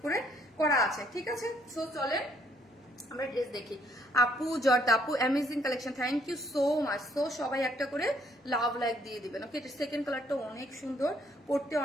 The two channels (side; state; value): both; normal; correlation 0.67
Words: করে করা আছে, ঠিক আছে? সো চলে আমরা ড্রেস দেখি। আপু জর্দা আপু amazing collection, thank you so much. So সবাই একটা করে লাভ লাইক দিয়ে দিবেন, ওকে? এটা সেকেন্ড কালারটা অনেক সুন্দর, পড়তে